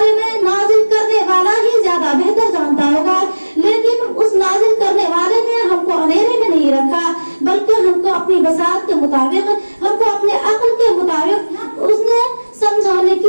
میں نازل کرنے والا ہی زیادہ بہتر جانتا ہوگا, لیکن اس نازل کرنے والے نے ہم کو اندھیرے میں نہیں رکھا, بلکہ ہم کو اپنی بساط کے مطابق, ہم کو اپنے عقل کے مطابق اس نے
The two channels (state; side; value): inverted; both; correlation -1.00